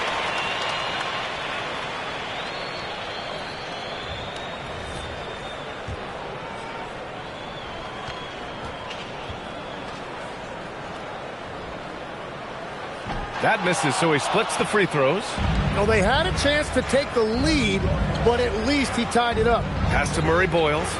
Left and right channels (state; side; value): identical; both; correlation 1.00